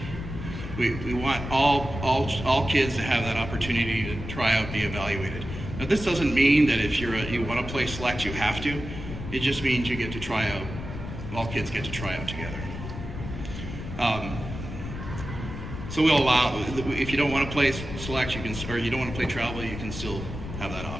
We want all kids to have that opportunity to try out, be evaluated. Now this doesn't mean that if you want to play select, you have to. It just means you get to try out. All kids get to try out together. So we'll allow, if you don't want to play select, or you don't want to play travel, you can still have that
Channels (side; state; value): left; noise; rumble, 8 dB below the sound